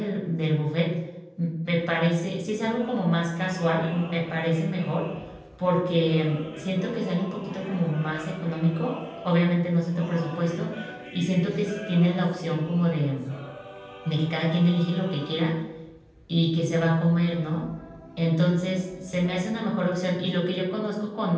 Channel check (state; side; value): identical; both; correlation 1.00